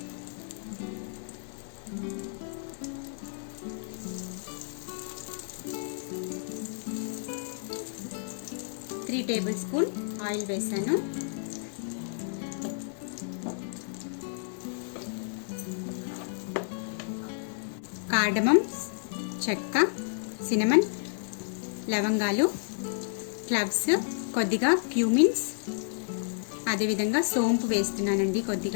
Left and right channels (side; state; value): right; silent; digital silence